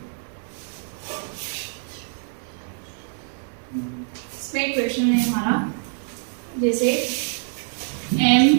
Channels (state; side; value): silent; left; 62 dB below the other